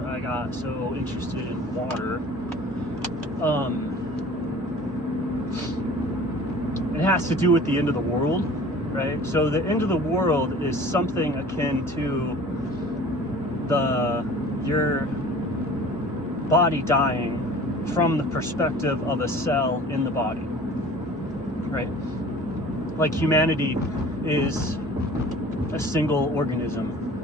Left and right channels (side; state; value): both; normal; correlation 0.45